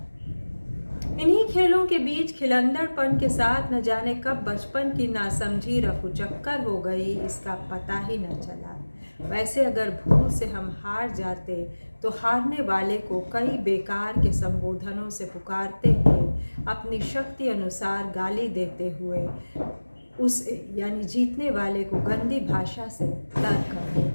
इन्हीं खेलों के बीच खिलंदड़पन के साथ न जाने कब बचपन की नासमझी रफूचक्कर हो गई, इसका पता ही न चला। वैसे अगर भूल से हम हार जाते तो हारने वाले को कई बेकार के संबोधनों से पुकारते हुए, अपनी शक्ति अनुसार गाली देते हुए उस यानी जीतने वाले को गंदी भाषा से तर्क कर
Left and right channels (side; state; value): both; inverted; correlation -1.00